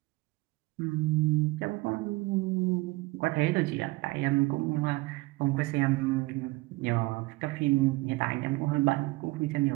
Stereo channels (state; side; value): quieter; left; 22.0 dB